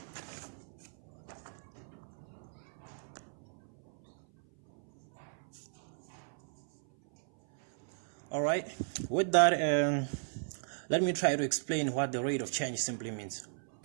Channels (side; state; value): left; silent; 54 dB below the other